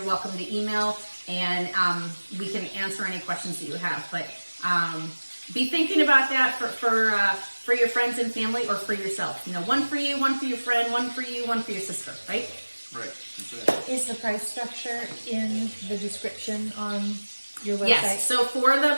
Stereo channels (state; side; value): inverted; both; correlation -1.00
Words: welcome to email, and we can answer any questions that you have. But be thinking about that for your friends and family, or for yourself. One for you, one for your friend, one for you, one for your sister, right? Right. Is the price structure in the description on your website? Yes. So for the